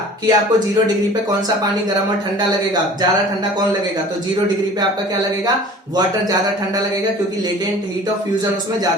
कि आपको 0 डिग्री पे कौन सा पानी गर्म और ठंडा लगेगा, ज्यादा ठंडा कौन लगेगा, तो 0 डिग्री पे आपका क्या लगेगा, वाटर ज्यादा ठंडा लगेगा, क्योंकि लेटेंट हीट ऑफ फ्यूजन उसमें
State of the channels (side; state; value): both; normal; correlation 0.45